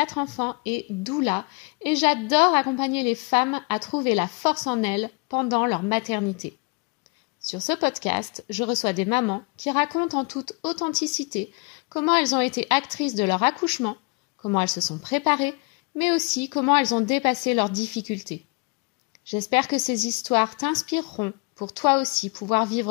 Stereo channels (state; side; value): quieter; right; 30.8 dB